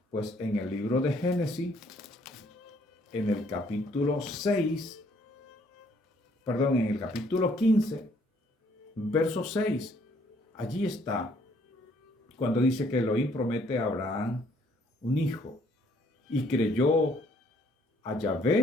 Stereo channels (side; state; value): both; normal; correlation 0.64